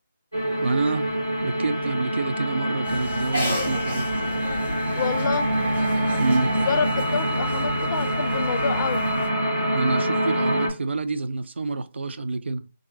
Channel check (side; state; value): both; inverted; correlation -0.81